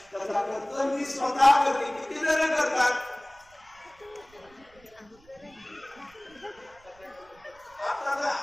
तसा खर्च मी स्वतः करते. किती जण करतात? आता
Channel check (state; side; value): noise; right; rumble, 29 dB below the sound